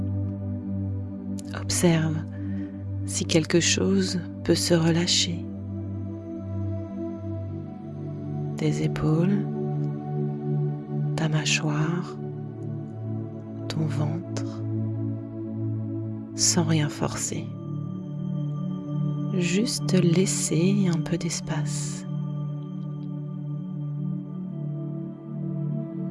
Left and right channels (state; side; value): identical; both; correlation 1.00